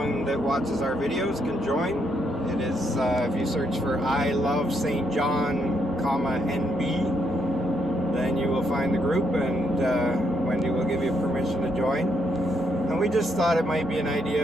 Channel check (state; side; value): normal; both; correlation 0.76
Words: that watches our videos can join. It is, if you search for I Love St. John, NB, then you will find the group, and Wendy will give you permission to join. And we just thought it might be an